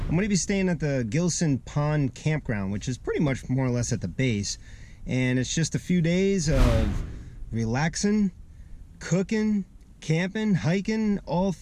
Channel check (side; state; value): both; identical; correlation 1.00